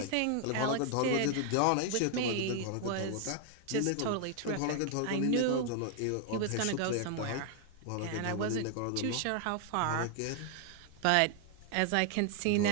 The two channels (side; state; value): both; different; correlation 0.00